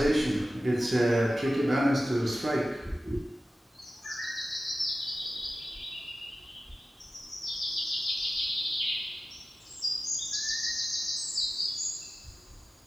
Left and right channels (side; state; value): both; normal; correlation 0.95